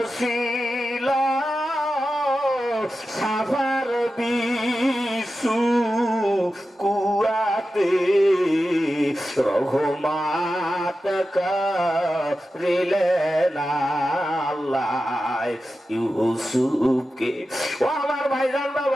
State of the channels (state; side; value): normal; both; correlation 0.92